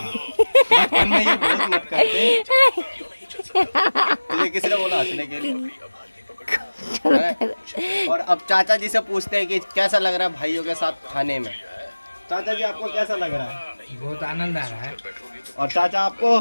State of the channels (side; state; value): both; inverted; correlation -1.00